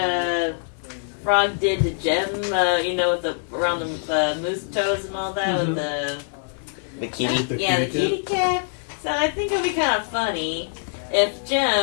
Frog did to Gem, with the around the moose toes and all that with the kitty. The the kitty kitty cat. So I think it'd be kind of funny if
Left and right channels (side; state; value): right; silent; digital silence